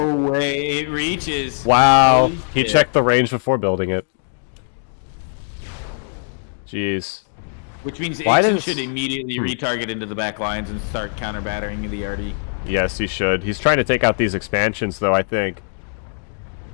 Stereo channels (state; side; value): silent; right; digital silence